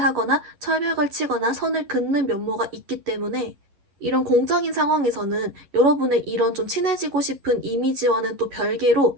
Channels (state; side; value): late; left; 11 ms